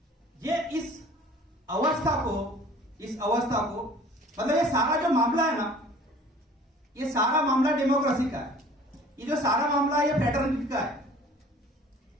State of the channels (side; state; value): both; normal; correlation 0.49